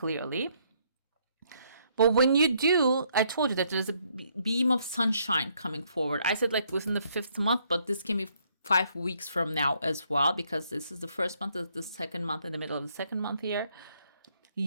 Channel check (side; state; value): both; inverted; correlation -0.70